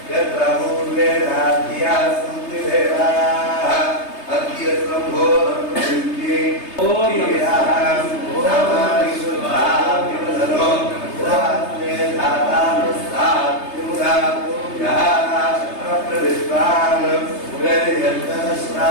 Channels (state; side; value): late; right; 3.3 ms